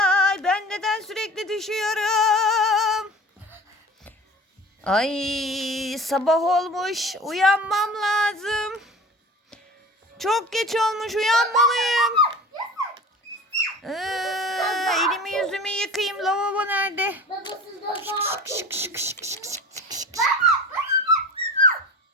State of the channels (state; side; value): normal; both; correlation 0.38